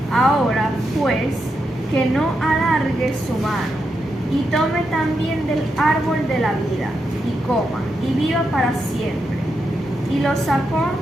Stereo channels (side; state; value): both; normal; correlation 0.84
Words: Ahora, pues, que no alargue su mano, y tome también del árbol de la vida, y coma, y viva para siempre. Y lo sacó